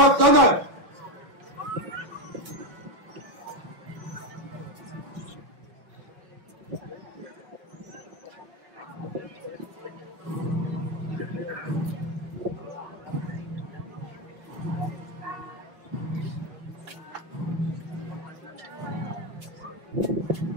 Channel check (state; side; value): late; left; 6.1 ms